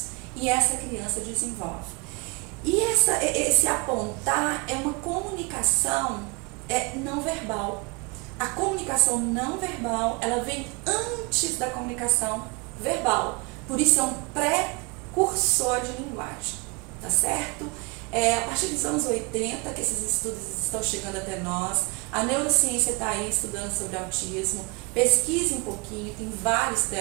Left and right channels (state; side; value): quieter; left; 28.7 dB